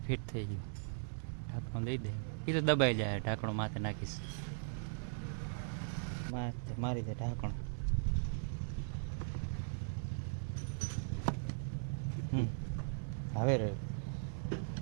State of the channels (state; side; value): silent; left; 52 dB below the other